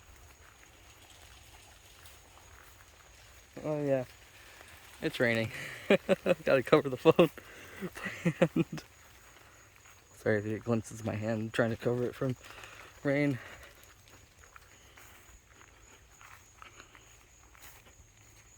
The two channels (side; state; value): both; identical; correlation 1.00